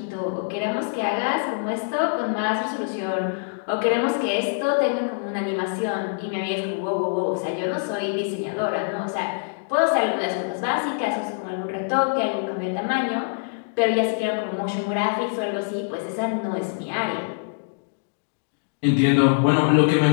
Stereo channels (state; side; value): silent; right; digital silence